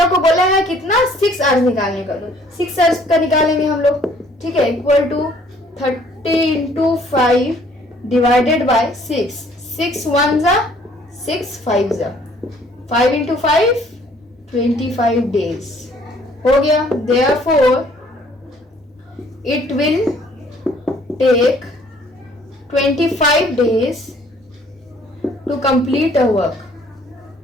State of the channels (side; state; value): both; normal; correlation 0.60